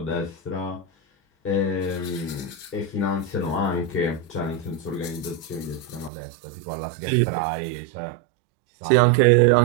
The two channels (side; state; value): left; drops out; at 6.1 s